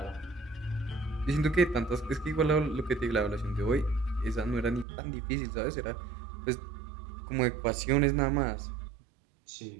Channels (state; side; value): drops out; left; at 4.9 s